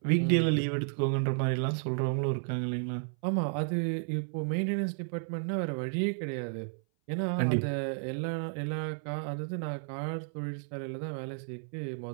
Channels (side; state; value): left; silent; 56 dB below the other